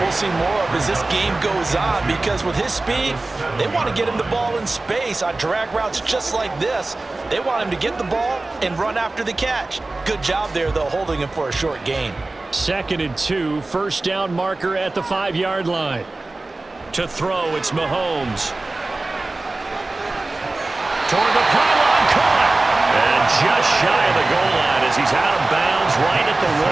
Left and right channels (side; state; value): left; quieter; 3.1 dB